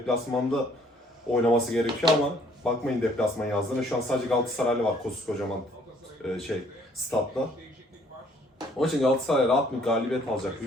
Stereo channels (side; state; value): both; normal; correlation 0.61